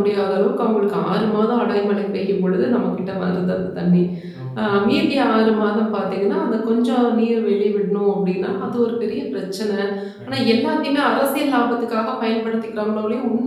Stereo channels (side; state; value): both; identical; correlation 1.00